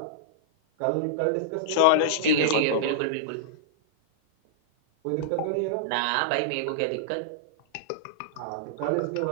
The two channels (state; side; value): different; both; correlation -0.02